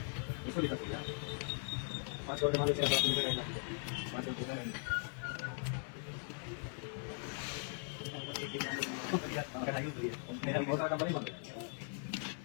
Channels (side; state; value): right; silent; 51 dB below the other